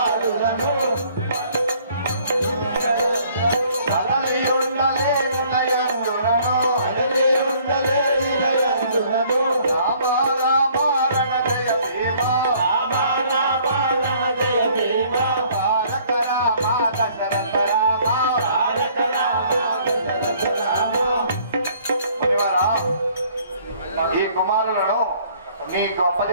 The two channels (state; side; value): inverted; both; correlation -0.59